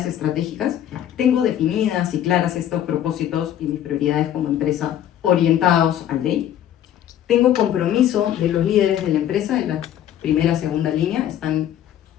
estratégicas. Tengo definidas y claras estos propósitos y mis prioridades como empresa orientados al DEI. Tengo compromiso de los líderes de la empresa, en la primera, segunda línea, están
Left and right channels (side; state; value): right; quieter; 11.0 dB